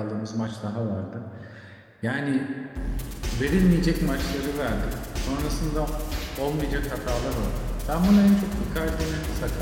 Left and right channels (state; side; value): identical; both; correlation 1.00